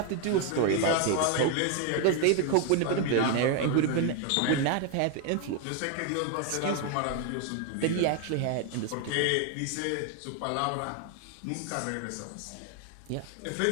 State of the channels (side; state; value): both; different; correlation 0.01